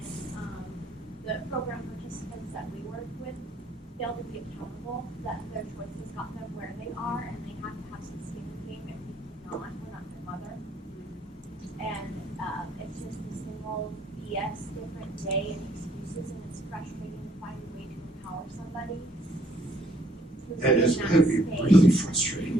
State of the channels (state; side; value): normal; both; correlation 0.66